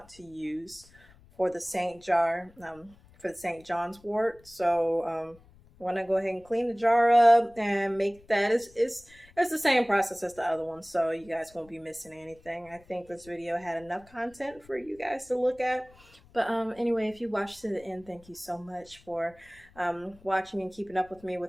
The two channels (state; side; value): noise; left; rumble, 26 dB below the sound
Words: to use for the St. John's wort. So want to go ahead and clean the jar up and make that. It's the same process as the other one, so you guys won't be missing anything. I think this video had enough content for you guys to look at. But anyway, if you watched to the end, thank you so much for watching and keeping up with me